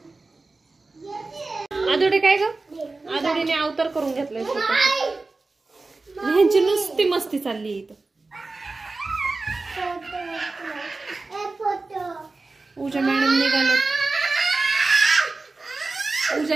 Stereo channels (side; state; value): left; quieter; 3.5 dB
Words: आदोडे काय ग? आदोडीने अवतार करून घेतलाय. ह्यांची नुसती मस्ती चालली इथं. पूजा मॅडम निघाले.